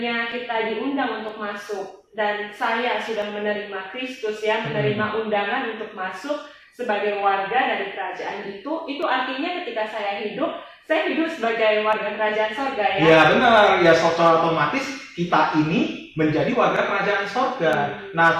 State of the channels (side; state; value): both; identical; correlation 1.00